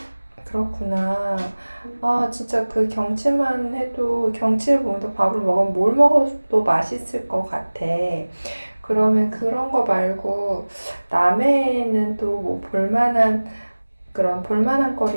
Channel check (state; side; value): inverted; both; correlation -1.00